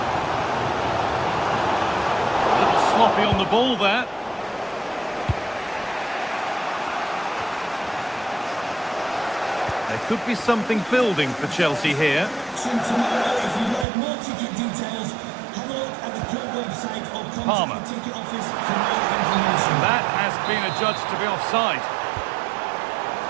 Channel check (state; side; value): drops out; left; at 13.9 s